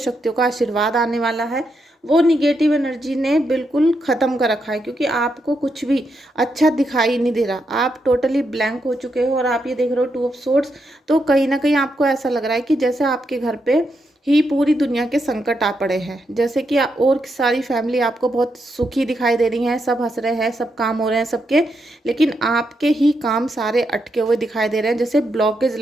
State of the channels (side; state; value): both; normal; correlation 0.82